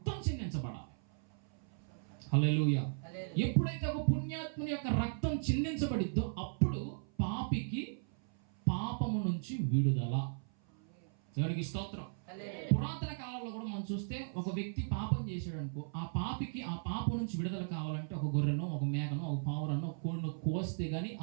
చిందించబడాలి. హల్లెలూయా. ఎప్పుడైతే ఒక పుణ్యాత్ముని యొక్క రక్తం చిందించబడిద్దో అప్పుడు పాపికి పాపము నుంచి విడుదల. దేవునికి స్తోత్రం. పురాతన కాలంలో కూడా మనం చూస్తే ఒక వ్యక్తి పాపం చేశాడు అనుకో, ఆ పాపికి ఆ పాపం నుంచి విడుదల కావాలంటే ఒక గొర్రెనో, ఒక మేకనో, ఒక పావురనో, ఒక కోడినో కోస్తే గానీ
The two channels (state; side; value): silent; left; 53 dB below the other